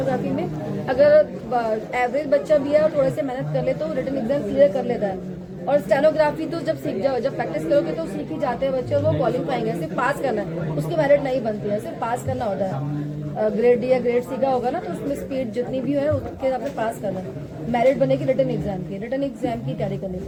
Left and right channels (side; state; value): both; identical; correlation 1.00